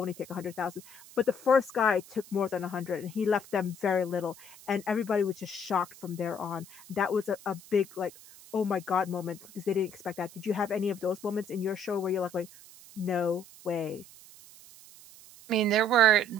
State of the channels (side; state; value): right; noise; hiss, 20 dB below the sound